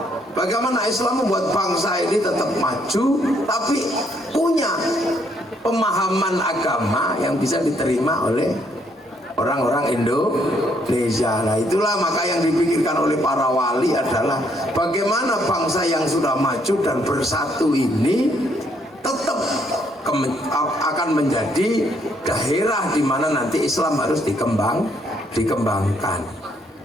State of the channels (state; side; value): normal; both; correlation 0.70